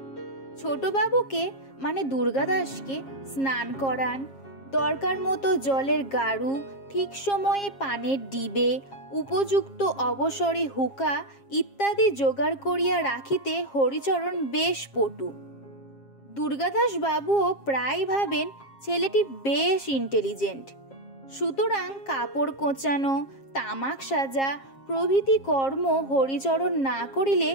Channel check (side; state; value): right; late; 7.4 ms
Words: ছোটবাবুকে মানে দুর্গাদাসকে স্নান করান, দরকার মতো জলের গাড়ু, ঠিক সময়ে পানের ডিবে, উপযুক্ত অবসরে হুকা ইত্যাদি জোগাড় করিয়া রাখিতে হরিচরণ বেশ পটু। দুর্গাদাসবাবুও প্রায় ভাবেন ছেলেটি বেশ ইন্টেলিজেন্ট। সুতরাং কাপড় কোঁচানো, তামাক সাজা প্রভৃতি কর্ম হরিচরণ না করিলে